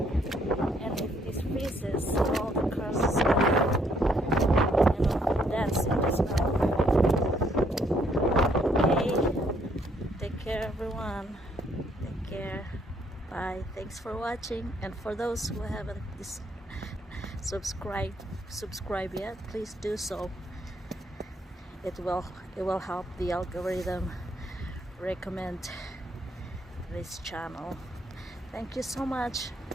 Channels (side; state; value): both; normal; correlation 0.69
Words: and if this freezes, all the cars is gonna dance in the snow. Take care everyone. Take care. Bye. Thanks for watching, and for those who haven't subscribed yet, please do so. It will help the algorithm recommend this channel. Thank you so much.